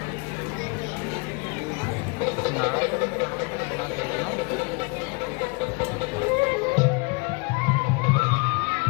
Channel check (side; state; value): right; quieter; 30.9 dB